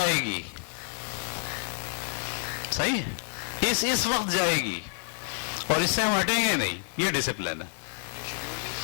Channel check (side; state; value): right; silent; 59 dB below the other